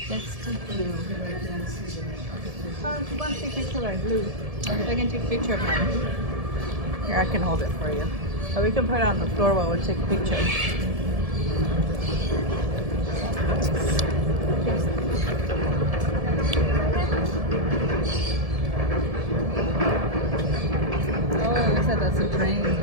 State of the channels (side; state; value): left; late; 1.7 ms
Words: Let's do Blue. Oh, you want to take a picture of Blue? I can take a picture of mine. Here, I can hold it for you. Or we can put it on the floor while we take a picture. Oh, looks like that's a train.